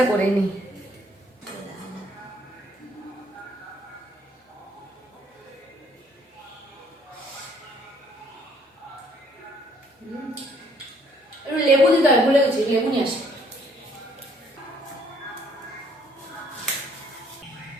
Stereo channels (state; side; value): normal; both; correlation 0.64